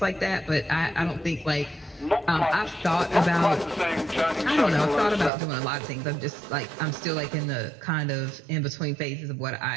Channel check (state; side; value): drops out; left; at 5.3 s